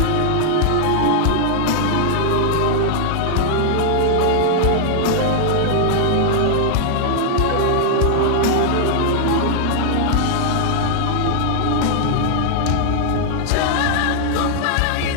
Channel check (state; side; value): different; both; correlation -0.01